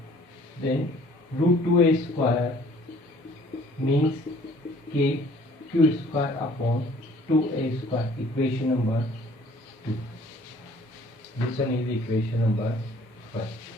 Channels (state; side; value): normal; both; correlation 0.55